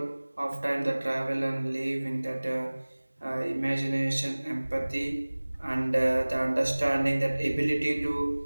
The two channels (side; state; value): both; inverted; correlation -1.00